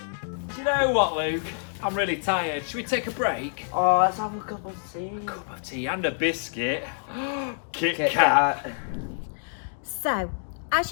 Do you know what, Luke? I'm really tired. Should we take a break? Oh, let's have a cup of tea. Cup of tea and a biscuit. Kit Kit Kat. Kat. So, as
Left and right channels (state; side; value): silent; right; digital silence